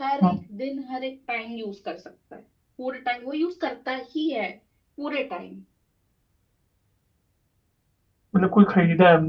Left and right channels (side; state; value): both; identical; correlation 1.00